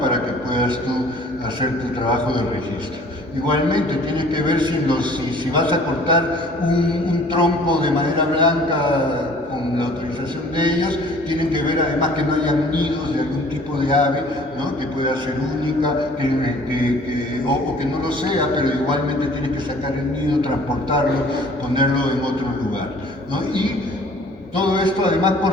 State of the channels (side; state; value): both; normal; correlation 0.52